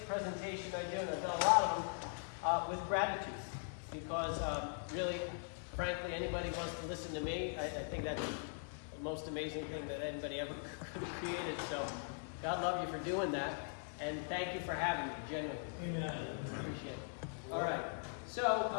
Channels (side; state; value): right; silent; digital silence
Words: presentation I do, and I've done a lot of them, with gratitude. Because really, frankly, anybody wants to listen to me, I think that's the most amazing thing that anybody ever created. So God love you for doing that. And thank you for having me, genuinely. Amen. Appreciate it. All right. So,